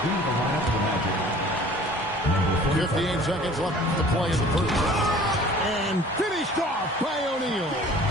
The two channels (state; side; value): normal; both; correlation 0.48